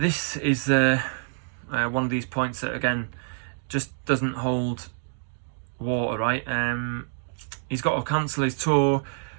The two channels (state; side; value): silent; left; digital silence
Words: of these points that again just doesn't hold water, right? He's got to cancel his tour.